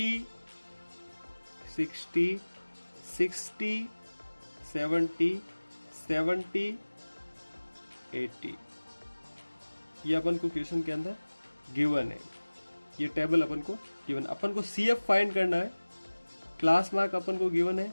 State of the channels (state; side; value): inverted; both; correlation -1.00